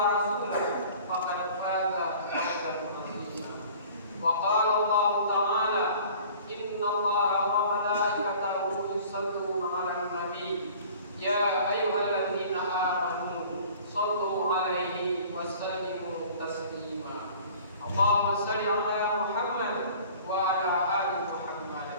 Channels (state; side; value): inverted; both; correlation -0.48